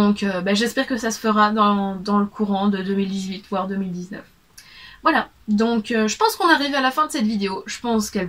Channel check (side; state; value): both; identical; correlation 1.00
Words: j'espère que ça se fera dans le courant de 2018 voire 2019. Voilà, donc je pense qu'on arrive à la fin de cette vidéo. Je pense qu'elle